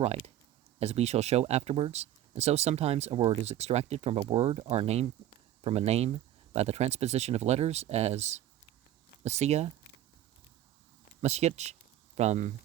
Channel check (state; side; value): quieter; left; 12.3 dB